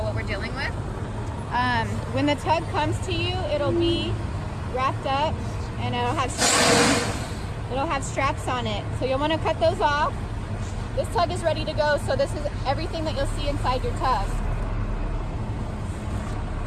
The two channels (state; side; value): identical; both; correlation 1.00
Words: what we're dealing with. When the tug comes to you, it'll be wrapped up and it'll have straps on it. So you'll want to cut those off. This tug is ready to go, so this is everything that you'll see inside your tug.